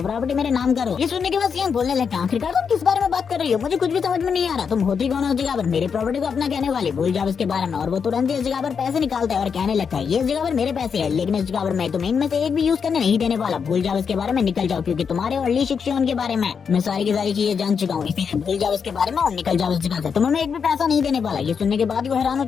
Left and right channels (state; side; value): quieter; right; 6.4 dB